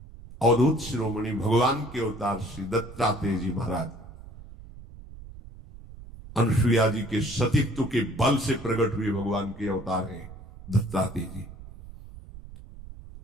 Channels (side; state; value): right; noise; rumble, 16 dB below the sound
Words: अवधूत शिरोमणि भगवान के अवतार श्री दत्तात्रेय जी महाराज अनुसुईया जी के सतीत्व के बल से प्रकट हुए भगवान के अवतार हैं दत्तात्रेय जी।